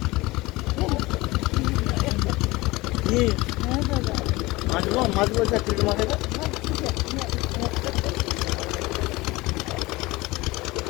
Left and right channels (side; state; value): right; quieter; 21.1 dB